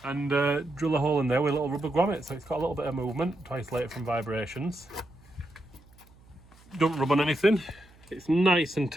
and drill a hole in there with a little rubber grommet, so it's got a little bit of movement to isolate it from vibrations. Don't rub on anything. It's nice and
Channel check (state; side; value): noise; right; hum, 27 dB below the sound